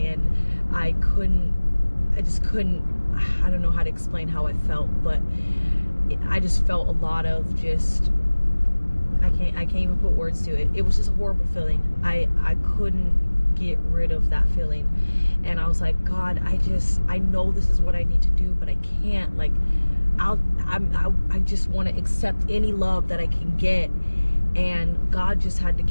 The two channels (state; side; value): inverted; both; correlation -1.00